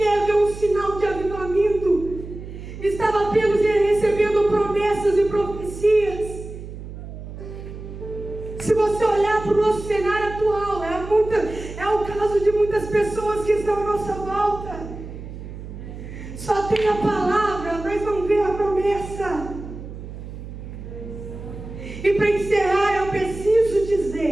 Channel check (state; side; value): noise; right; hum, 11 dB below the sound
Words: ver um sinal de avivamento. Estava apenas recebendo promessas e profecias. Se você olhar para o nosso cenário atual, é o caso de muitas pessoas que estão à nossa volta. Só tem a palavra, mas não vê a promessa. E para encerrar, eu preciso